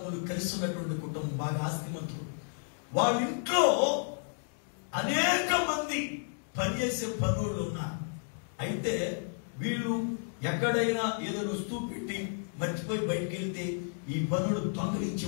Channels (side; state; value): right; silent; digital silence